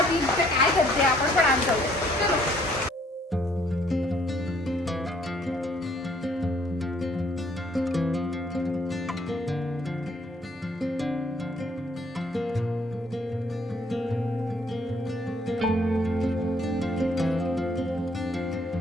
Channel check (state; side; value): normal; both; correlation 0.64